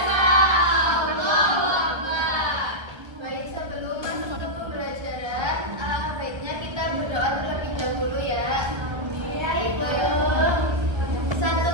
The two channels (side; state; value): left; late; 1.4 ms